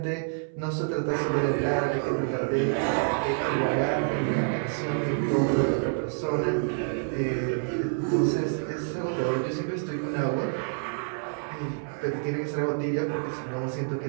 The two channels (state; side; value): silent; left; 60 dB below the other